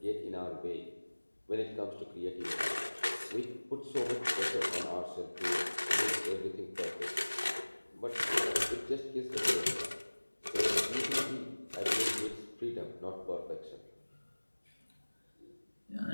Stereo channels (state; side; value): inverted; both; correlation -1.00